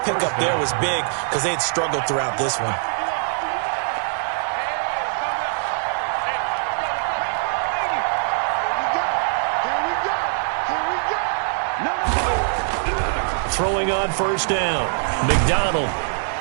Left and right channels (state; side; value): silent; left; digital silence